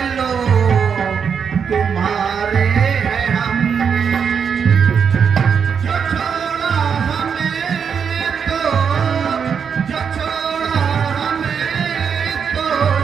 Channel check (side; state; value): left; quieter; 6.8 dB